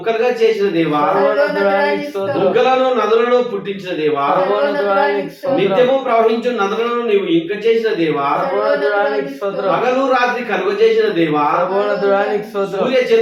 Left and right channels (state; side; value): identical; both; correlation 1.00